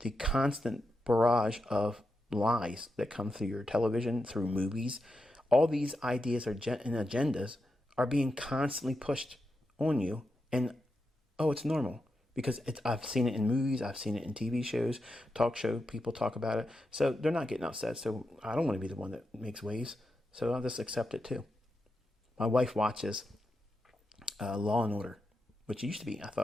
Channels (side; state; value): both; normal; correlation 0.87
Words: the constant barrage of lies that come through your television, through movies. All these ideas and agendas are being constantly pushed on you, and it's normal because I've seen it in movies, I've seen it in TV shows, talk show people talk about it, so they're not getting upset. So I don't want to be the one that makes waves, so I'll just accept it too. My wife watches Law and Order, which used to be, I